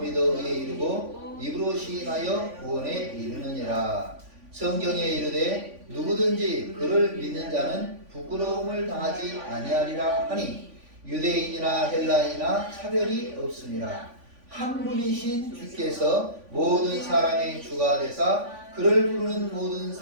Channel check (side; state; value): left; late; 3.5 ms